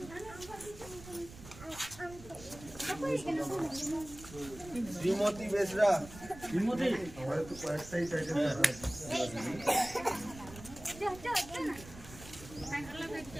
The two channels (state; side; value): noise; right; rumble, 16 dB below the sound